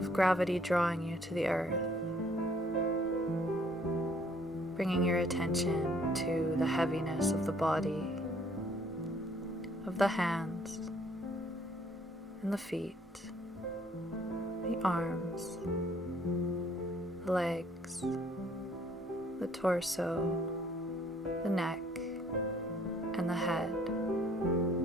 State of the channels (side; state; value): both; normal; correlation 0.62